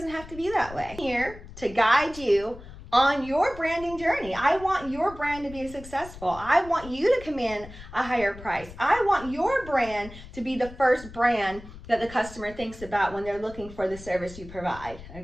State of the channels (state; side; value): noise; left; rumble, 16 dB below the sound